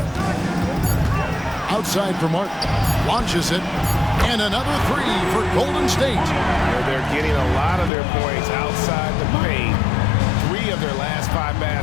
Outside for Martin. Launches it. And another 3 for Golden State. They're getting a lot of their points outside the paint. 3 of their last 5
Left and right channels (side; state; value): right; drops out; at 7.9 s